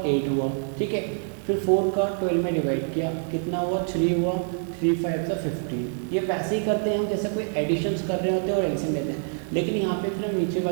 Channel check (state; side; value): silent; left; 61 dB below the other